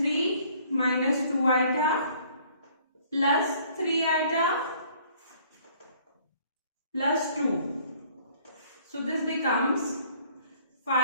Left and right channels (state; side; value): inverted; both; correlation -0.58